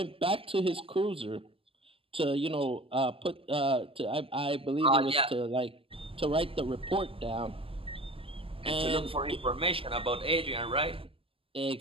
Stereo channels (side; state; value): left; late; 0.26 ms